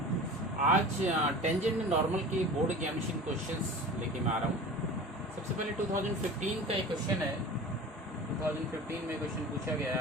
आज tangent normal की बोर्ड एग्जामिनेशन क्वेश्चंस लेके मैं आ रहा हूँ। सबसे पहले 2015 का एक क्वेश्चन है। 2015 में क्वेश्चन पूछा गया है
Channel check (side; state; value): both; normal; correlation 0.37